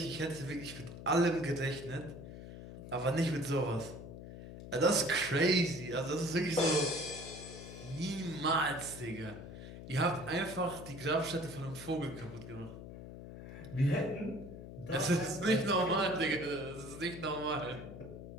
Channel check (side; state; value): left; noise; hum, 12 dB below the sound